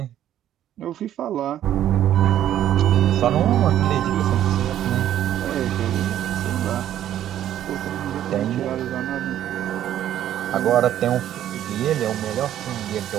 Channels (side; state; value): left; quieter; 11.5 dB